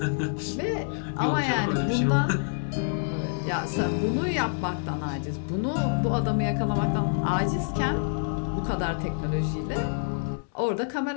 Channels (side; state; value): right; silent; 60 dB below the other